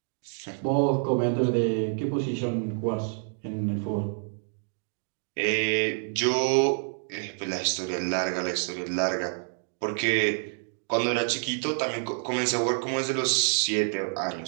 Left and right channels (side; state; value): left; silent; 59 dB below the other